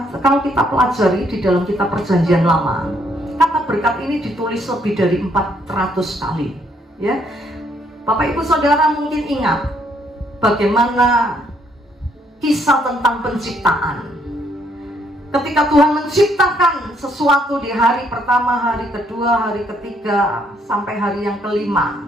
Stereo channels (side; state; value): both; normal; correlation 0.70